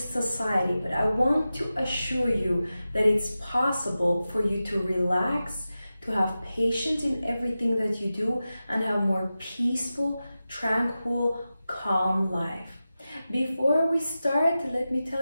society, but I want to assure you that it's possible for you to relax, to have patience in everything that you do and have more peaceful, tranquil, calm life. Before we start, let me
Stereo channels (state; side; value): inverted; both; correlation -0.94